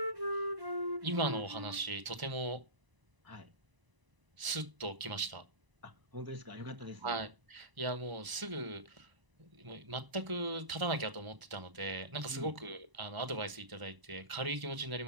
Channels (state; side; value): late; left; 1.0 ms